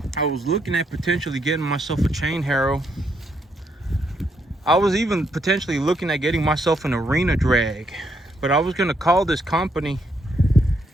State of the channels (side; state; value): both; normal; correlation 0.76